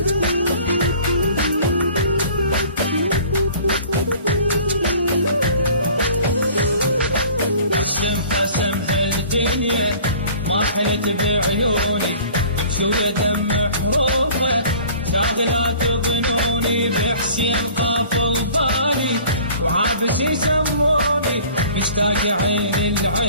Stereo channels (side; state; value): both; inverted; correlation -0.48